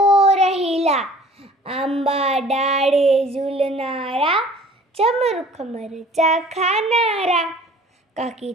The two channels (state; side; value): normal; both; correlation 0.49